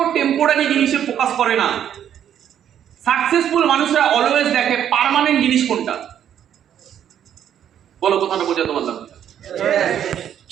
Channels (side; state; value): left; quieter; 9.8 dB